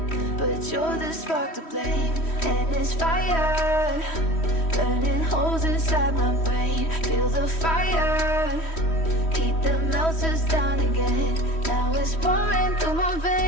but you're the spark to blame. And it's fire, burning holes inside my brain. Feel the fire, heat that melts us down again. Now it's pouring through my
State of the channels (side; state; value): right; late; 3.1 ms